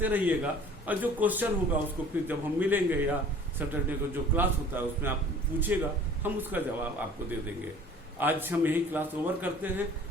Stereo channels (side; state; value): both; normal; correlation 0.48